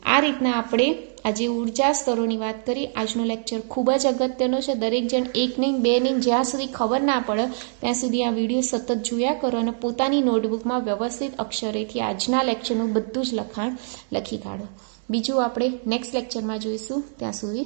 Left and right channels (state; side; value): silent; left; digital silence